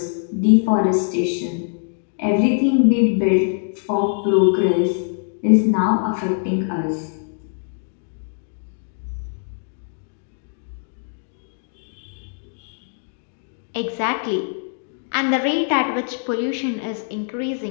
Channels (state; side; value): silent; right; 64 dB below the other